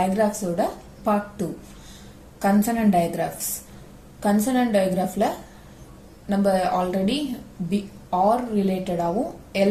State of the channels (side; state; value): both; identical; correlation 1.00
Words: ஓட part 2 consonant digraphs. Consonant digraphல நம்ம ஆல்ரெடி or related ஆவும் L